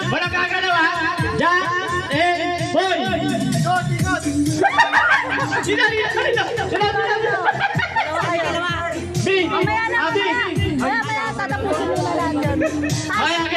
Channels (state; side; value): identical; both; correlation 1.00